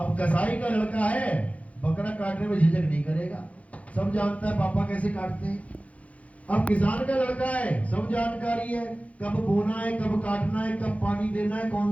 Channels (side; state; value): right; late; 0.066 ms